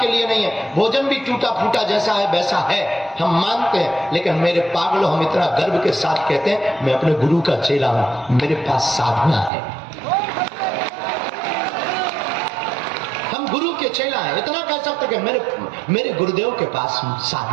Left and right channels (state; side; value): drops out; left; at 9.5 s